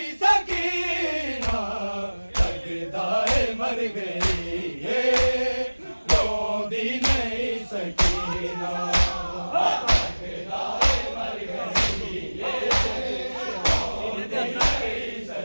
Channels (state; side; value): inverted; both; correlation -1.00